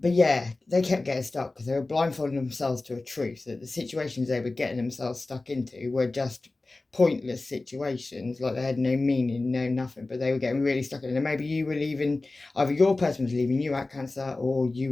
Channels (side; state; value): right; quieter; 3.2 dB